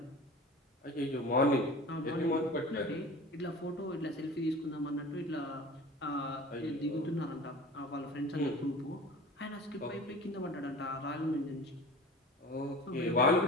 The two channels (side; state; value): both; normal; correlation 0.38